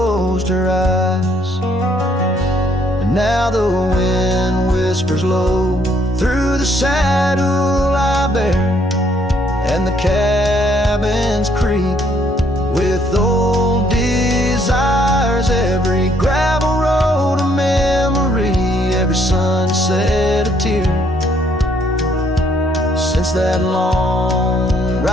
her eyes. And now the wind whispers low through the saddle I bear, and the cabins creak with old desires. Every gravel road a memory, every sunset a tear, since that long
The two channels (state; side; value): normal; both; correlation 0.67